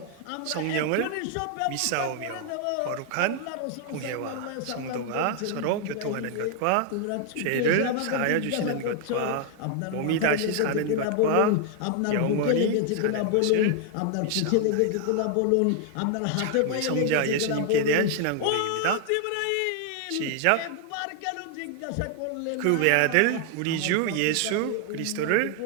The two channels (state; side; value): different; both; correlation 0.00